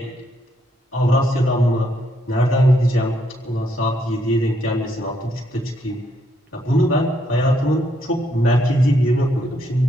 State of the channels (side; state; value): both; normal; correlation 0.74